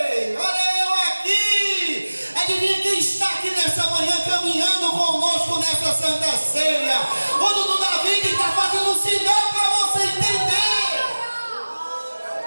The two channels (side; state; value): both; inverted; correlation -1.00